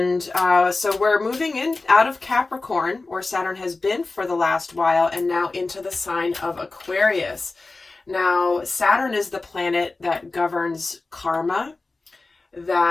so we're moving in out of Capricorn, where Saturn has been for the last while, and now into the sign of Aquarius. Now, Saturn is the planet that governs karma,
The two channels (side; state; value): right; quieter; 3.5 dB